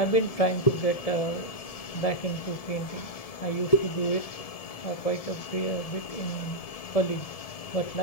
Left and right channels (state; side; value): late; right; 1.7 ms